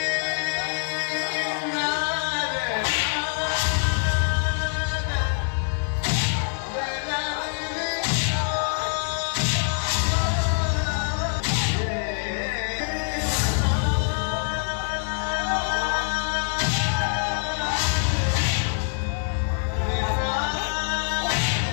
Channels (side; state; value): right; silent; digital silence